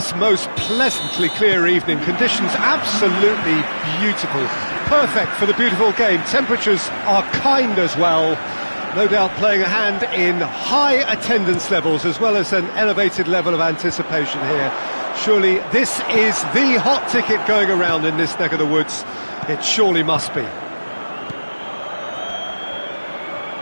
most pleasantly clear evening. Conditions absolutely beautiful. Perfect for the beautiful game. Temperatures are kind as well. No doubt playing a hand in high attendance levels as well as an elevated level of anticipation here. Surely this is the hot ticket going around in this neck of the woods. It surely must be.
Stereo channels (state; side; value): inverted; both; correlation -1.00